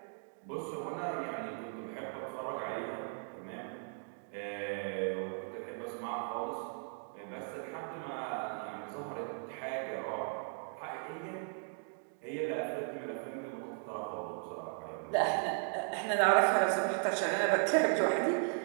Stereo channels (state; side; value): silent; left; 53 dB below the other